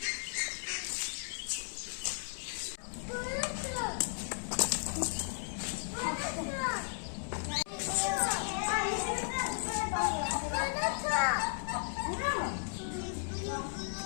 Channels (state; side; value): silent; right; digital silence